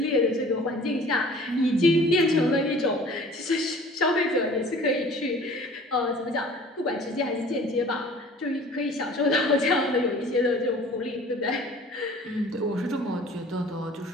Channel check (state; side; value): normal; both; correlation 0.48